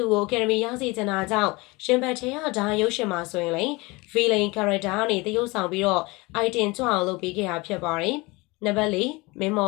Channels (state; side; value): quieter; right; 24.2 dB